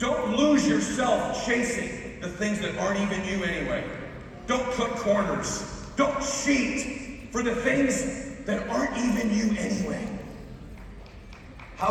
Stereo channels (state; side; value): identical; both; correlation 1.00